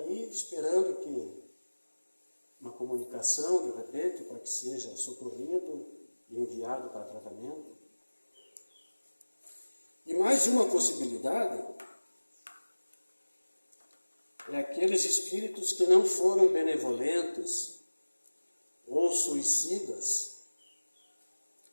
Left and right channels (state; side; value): inverted; both; correlation -1.00